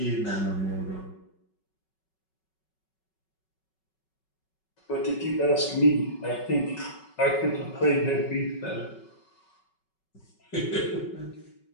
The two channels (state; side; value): late; right; 5.3 ms